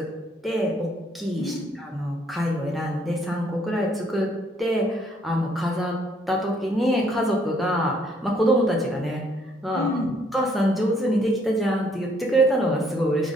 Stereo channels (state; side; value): normal; both; correlation 0.66